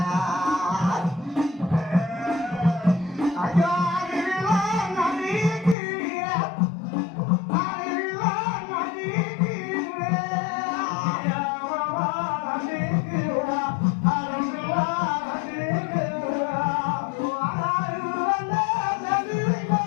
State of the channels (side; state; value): right; drops out; at 5.8 s